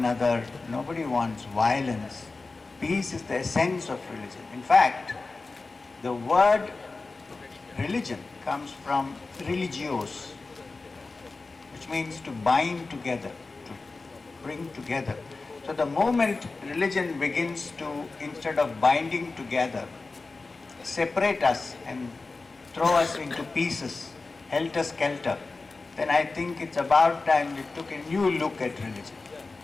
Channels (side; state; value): right; quieter; 3.7 dB